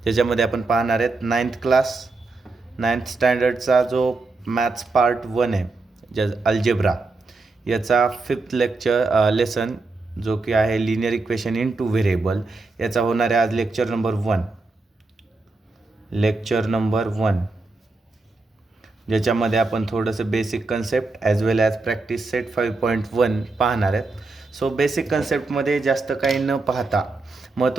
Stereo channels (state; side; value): quieter; left; 3.5 dB